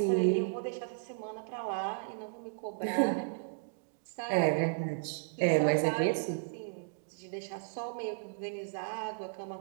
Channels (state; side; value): silent; left; digital silence